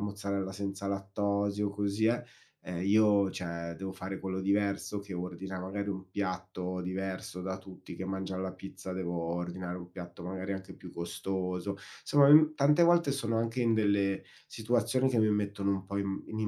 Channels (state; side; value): identical; both; correlation 1.00